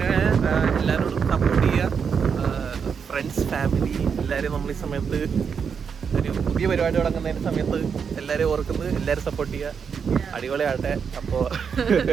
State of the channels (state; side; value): quieter; left; 6.5 dB